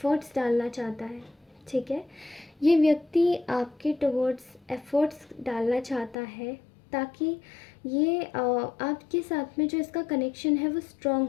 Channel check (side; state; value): right; drops out; at 6.2 s